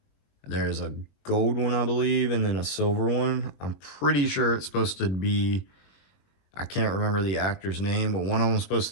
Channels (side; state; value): right; late; 21 ms